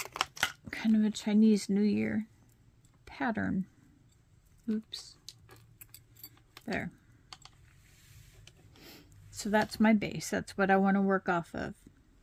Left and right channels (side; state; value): both; identical; correlation 1.00